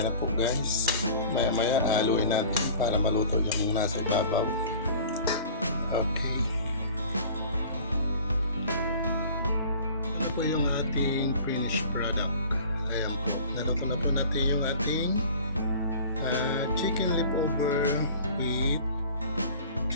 na po guys, maya-maya haluin natin para maluto yung nasa ibabaw. Okay. Yung ating finished product. Ayan po. Naluto na po natin yung ating chicken leftover with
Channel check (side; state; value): both; inverted; correlation -0.45